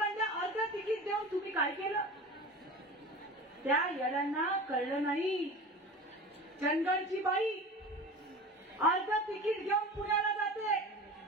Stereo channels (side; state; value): both; normal; correlation 0.34